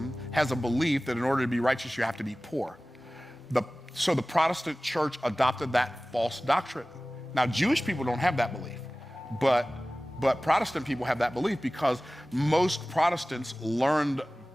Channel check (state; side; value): normal; both; correlation 0.97